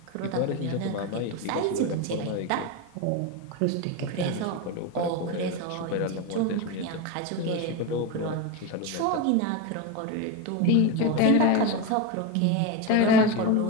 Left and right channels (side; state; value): both; different; correlation 0.04